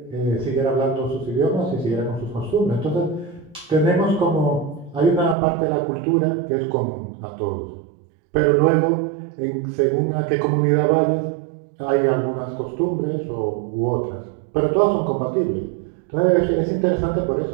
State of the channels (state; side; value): drops out; left; at 5.4 s